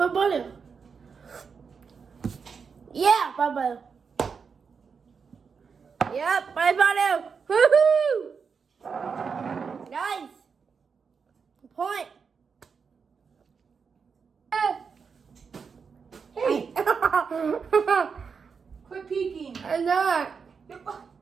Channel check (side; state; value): left; quieter; 5.8 dB